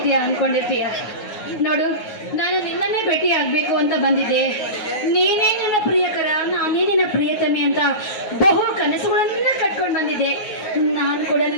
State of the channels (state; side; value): late; right; 9.4 ms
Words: ನೋಡು, ನಾನು ನಿನ್ನನ್ನೇ ಭೇಟಿ ಆಗ್ಬೇಕು ಅಂತ ಬಂದಿದ್ದೆ. ನೀನೇ ನನ್ನ ಪ್ರಿಯಕರ, ನಾನೇ ನಿನ್ನ ಪ್ರಿಯತಮಿ ಅಂತ ಬಹು ಕನಸುಗಳನ್ನ ಕಟ್ಕೊಂಡು ಬಂದಿದ್ದೆ. ನಾನು ಕೂಡ